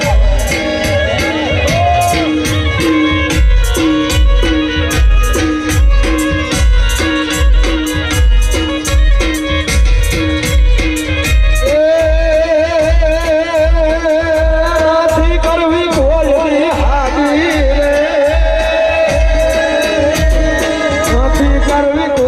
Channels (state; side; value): identical; both; correlation 1.00